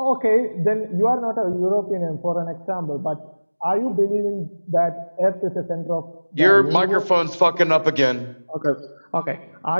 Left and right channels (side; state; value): both; inverted; correlation -1.00